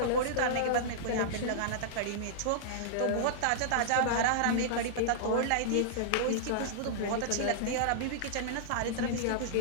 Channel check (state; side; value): different; both; correlation -0.02